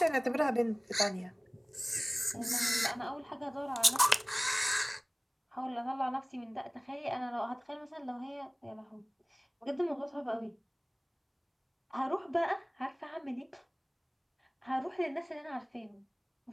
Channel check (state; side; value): identical; both; correlation 1.00